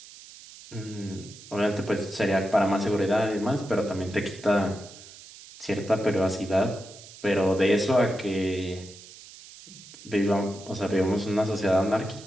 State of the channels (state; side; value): noise; right; hiss, 18 dB below the sound